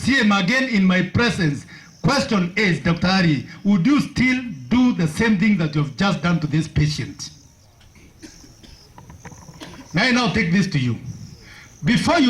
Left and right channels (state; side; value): identical; both; correlation 1.00